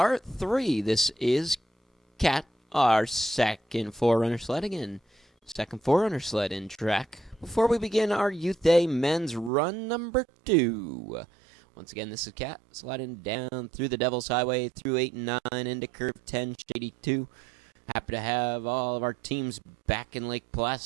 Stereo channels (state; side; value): drops out; left; at 9.5 s